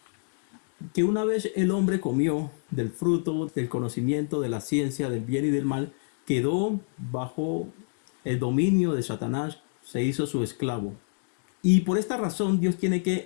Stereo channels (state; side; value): silent; right; digital silence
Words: una vez el hombre comió del fruto del conocimiento de la ciencia del bien y del mal, quedó bajo el dominio de Satanás, se hizo su esclavo. Y por esta razón Dios tiene que